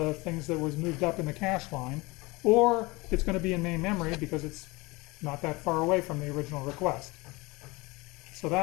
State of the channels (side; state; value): right; quieter; 23.8 dB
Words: things that was moved up in the cache line, or it's going to be in main memory because it's not that far away from the original request. So